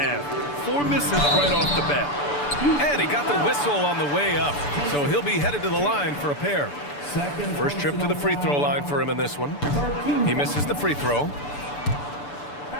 4 misses right off the bat. And he got the whistle on the way up, so he'll be headed to the line for a pair. First trip to the free throw line for him in this one. He misses the free throw.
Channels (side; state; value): right; late; 6.9 ms